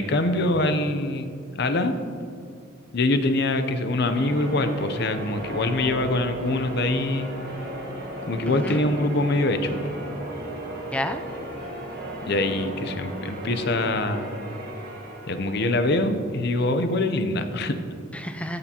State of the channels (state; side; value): normal; both; correlation 0.44